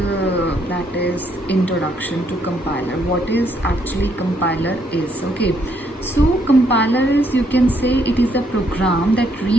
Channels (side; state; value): both; normal; correlation 0.72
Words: that is introduction to compiler. What is actually compiler is, okay. So compiler is, you can say, it is a program that